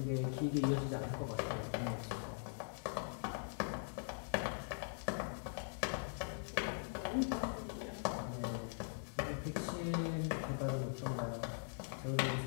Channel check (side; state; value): right; silent; digital silence